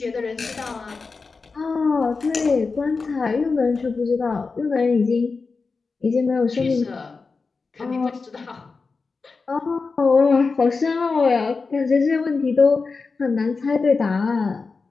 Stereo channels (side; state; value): right; quieter; 4.4 dB